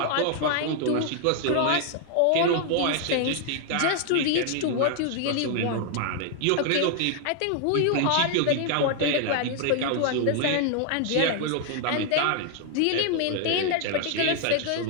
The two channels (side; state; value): both; different; correlation 0.00